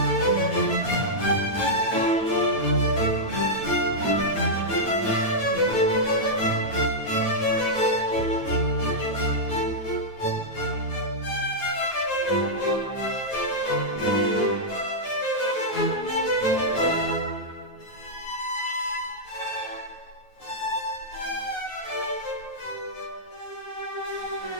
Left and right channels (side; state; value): right; late; 9.3 ms